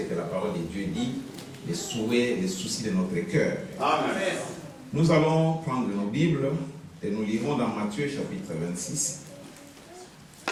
que la parole de Dieu dit, les souhaits, les soucis de notre cœur. Amen. Nous allons prendre nos Bibles et nous lisons dans Matthieu chapitre 26.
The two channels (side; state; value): both; identical; correlation 1.00